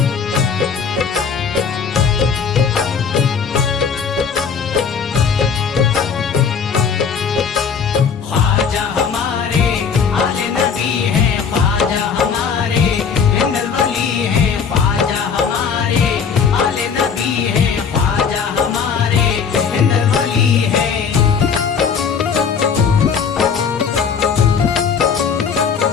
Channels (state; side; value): quieter; right; 6.3 dB